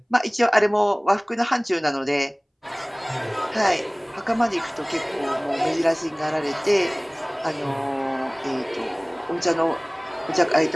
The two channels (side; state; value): both; identical; correlation 1.00